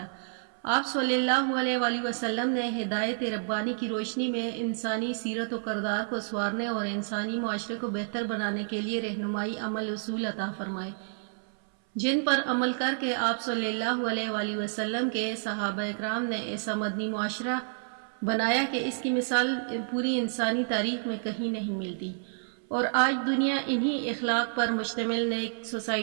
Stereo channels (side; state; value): left; silent; 58 dB below the other